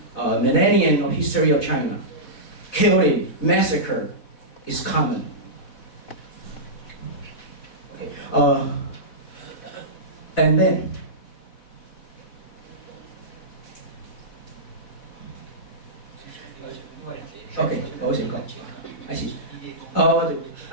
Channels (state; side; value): late; right; 4.0 ms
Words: millennium of history of China, killing, massacre is common. Okay, and then okay, I see.